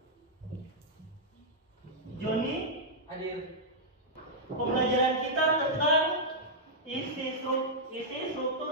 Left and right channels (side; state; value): both; normal; correlation -0.08